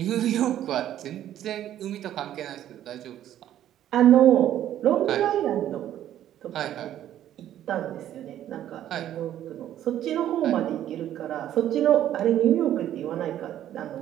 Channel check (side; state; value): left; quieter; 11.7 dB